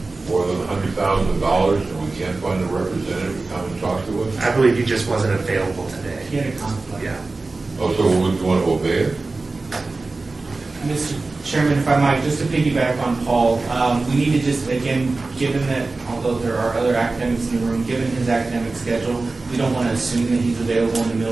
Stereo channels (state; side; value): quieter; left; 3.5 dB